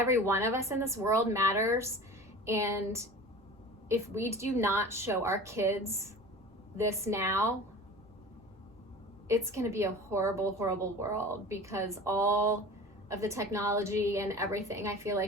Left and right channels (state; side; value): noise; right; rumble, 29 dB below the sound